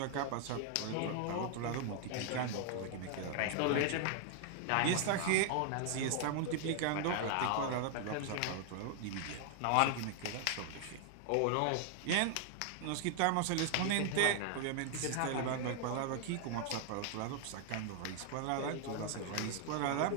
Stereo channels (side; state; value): both; different; correlation 0.00